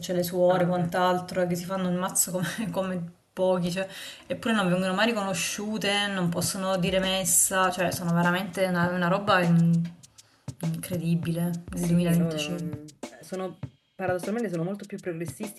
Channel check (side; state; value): both; identical; correlation 1.00